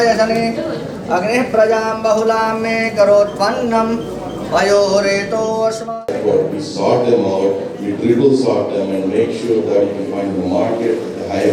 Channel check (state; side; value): identical; both; correlation 1.00